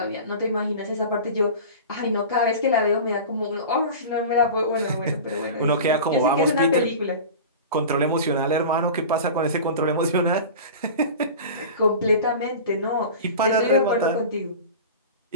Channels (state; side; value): inverted; both; correlation -0.34